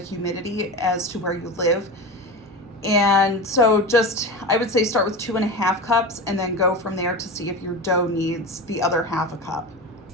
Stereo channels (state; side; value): normal; both; correlation 0.26